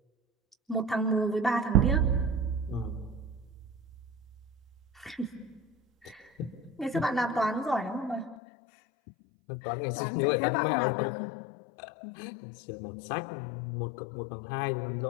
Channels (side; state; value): right; drops out; at 8.3 s